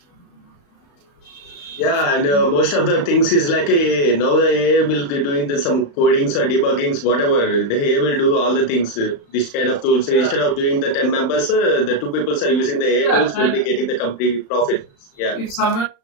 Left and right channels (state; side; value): late; right; 35 ms